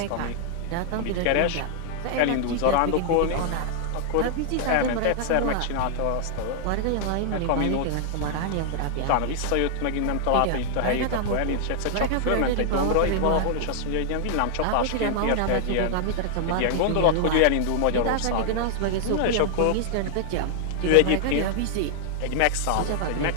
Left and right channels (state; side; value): different; both; correlation -0.01